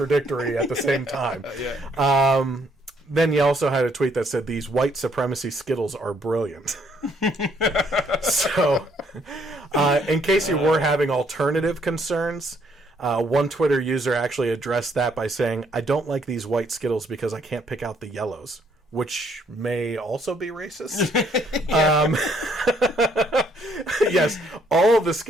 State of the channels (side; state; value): both; normal; correlation 0.68